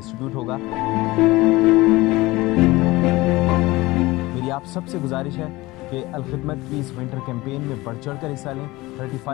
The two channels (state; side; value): quieter; right; 20.3 dB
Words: होगा। मेरी आप सबसे गुजारिश है कि अल खिदमत की इस विंटर कैंपेन में बढ़ चढ़ कर हिस्सा लें।